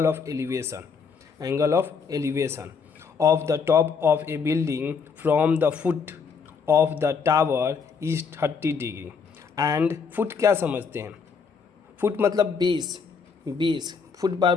of elevation. Angle of elevation of the top of A building from the foot of the tower is 30 degree. And foot क्या समझते हैं? फुट मतलब बेस फुट बार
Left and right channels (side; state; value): right; quieter; 5.7 dB